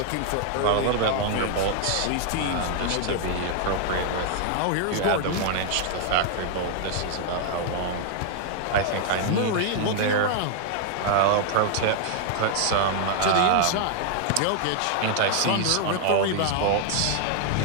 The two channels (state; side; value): different; both; correlation 0.00